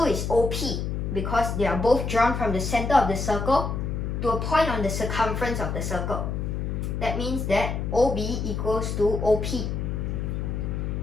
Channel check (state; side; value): noise; left; hum, 2 dB below the sound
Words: is OP, because they are both drawn from the center of the circle to a point on the circumference of the circle. That means that OB equals to OP.